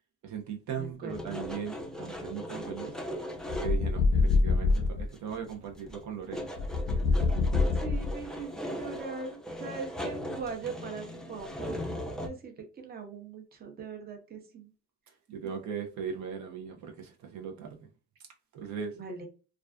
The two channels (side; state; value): both; normal; correlation 0.65